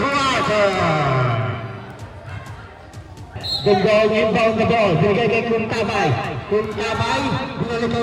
Dungdong inbound the ball. Binigay kay Kuntabay. Kuntabay, binalik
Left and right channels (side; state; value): both; identical; correlation 1.00